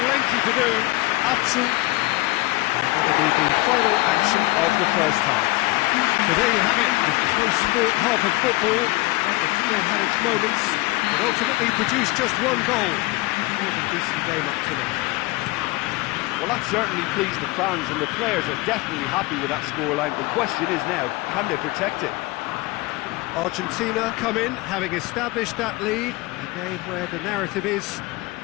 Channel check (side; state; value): right; quieter; 21.2 dB